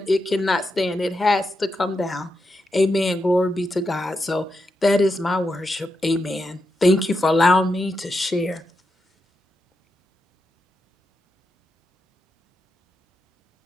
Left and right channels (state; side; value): normal; both; correlation 0.86